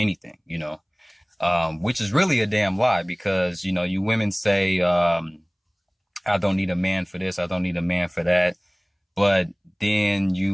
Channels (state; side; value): identical; both; correlation 1.00